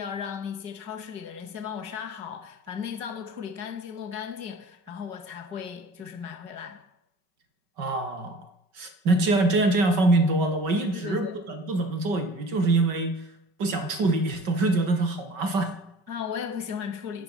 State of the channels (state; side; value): late; left; 5.3 ms